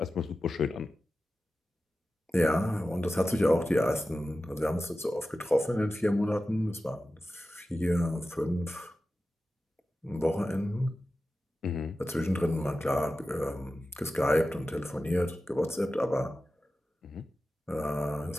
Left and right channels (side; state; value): both; normal; correlation 0.94